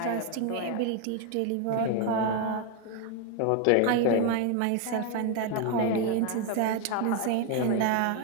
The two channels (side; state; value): both; different; correlation 0.01